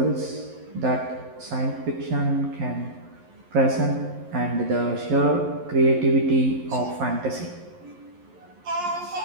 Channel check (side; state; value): left; late; 11 ms